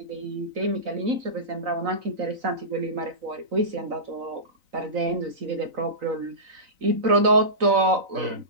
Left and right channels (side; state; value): left; late; 3.9 ms